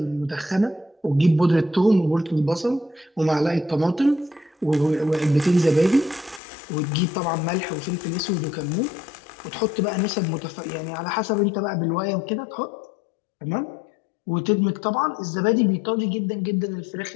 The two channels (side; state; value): right; drops out; at 6.4 s